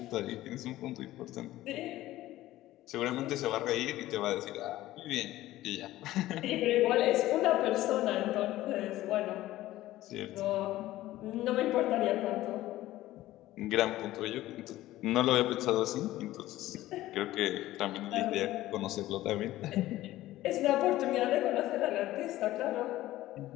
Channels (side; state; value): right; quieter; 15.6 dB